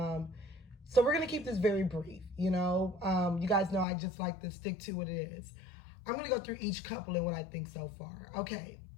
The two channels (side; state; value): right; drops out; at 3.9 s